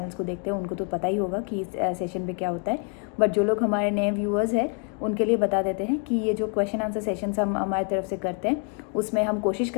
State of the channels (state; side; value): quieter; right; 38.6 dB